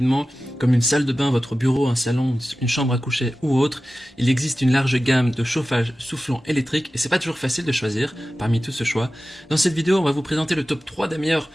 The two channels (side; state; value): both; normal; correlation 0.95